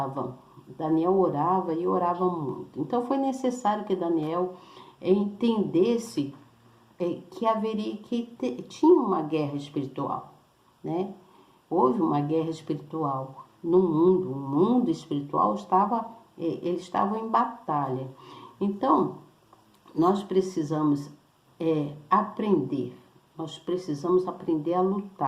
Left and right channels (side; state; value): both; identical; correlation 1.00